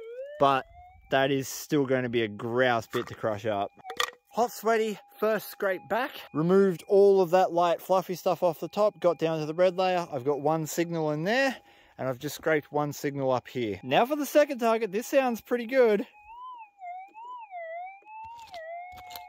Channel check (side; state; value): both; identical; correlation 1.00